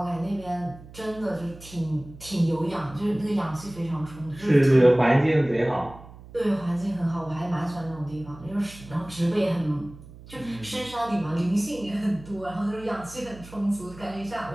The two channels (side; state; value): right; noise; hum, 18 dB below the sound